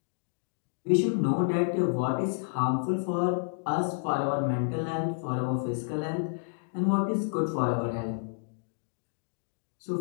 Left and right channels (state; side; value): silent; right; digital silence